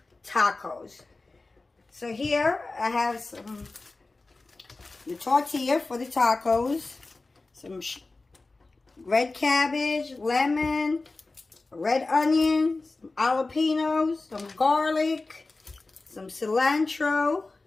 tacos. So here I have the tortilla for the tacos, some red cabbage, lemon, red onions, some jalapenos, some garlic, some cilantro,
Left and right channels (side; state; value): right; quieter; 3.4 dB